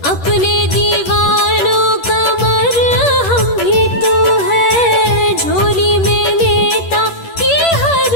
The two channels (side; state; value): right; late; 10 ms